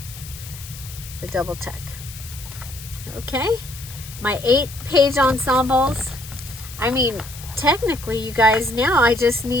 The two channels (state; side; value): noise; left; hiss, 14 dB below the sound